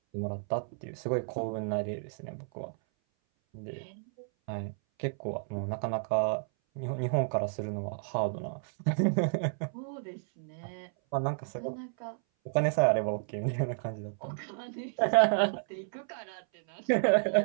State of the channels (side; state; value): left; silent; 57 dB below the other